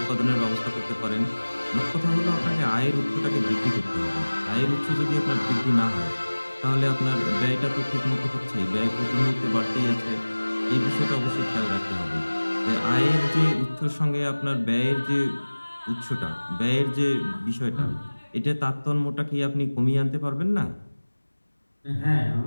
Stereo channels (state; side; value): inverted; both; correlation -1.00